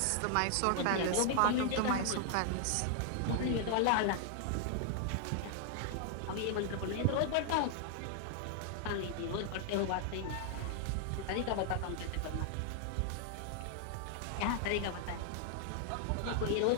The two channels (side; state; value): both; different; correlation 0.00